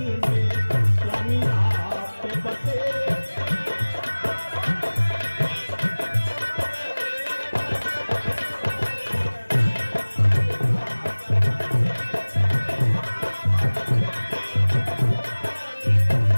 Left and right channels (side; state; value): both; inverted; correlation -1.00